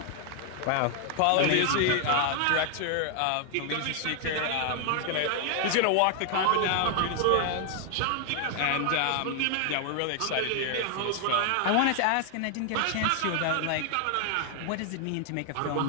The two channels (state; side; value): different; both; correlation 0.00